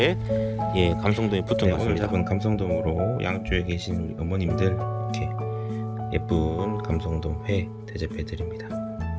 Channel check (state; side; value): identical; both; correlation 1.00